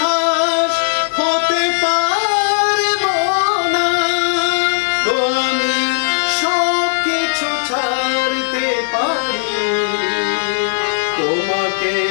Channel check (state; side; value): silent; right; digital silence